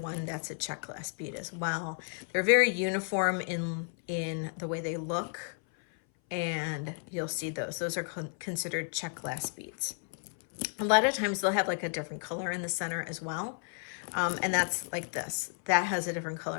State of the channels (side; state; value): right; silent; 56 dB below the other